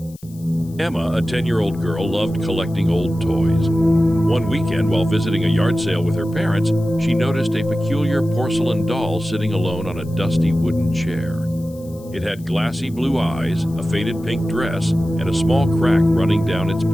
Emma, a 10-year-old girl, loved collecting old toys. One weekend, while visiting a yard sale with her parents, she noticed a peculiar porcelain doll sitting alone on a dusty wooden chair. It had glassy blue eyes, a faded pink dress, and a small crack running down its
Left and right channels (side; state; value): left; noise; hiss, 25 dB below the sound